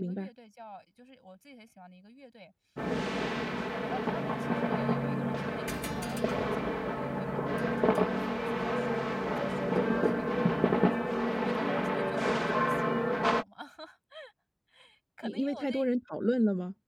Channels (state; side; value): identical; both; correlation 1.00